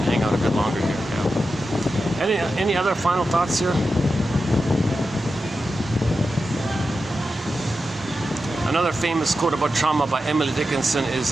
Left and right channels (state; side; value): normal; both; correlation 0.90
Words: hang out a bit longer here. Yeah. Any other final thoughts here? Another famous quote about trauma by Emily Dickinson